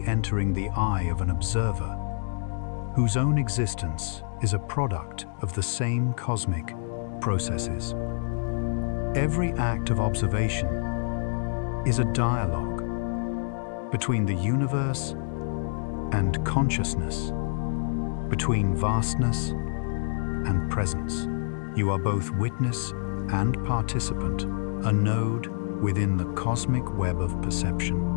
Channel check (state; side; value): silent; right; 60 dB below the other